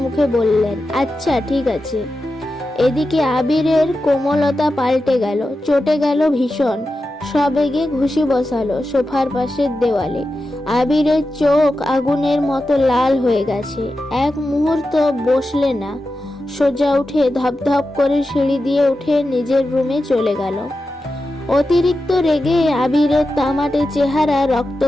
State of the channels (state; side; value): normal; both; correlation 0.91